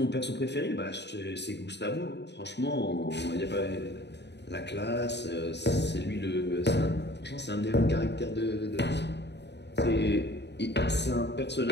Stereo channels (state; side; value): late; right; 0.50 ms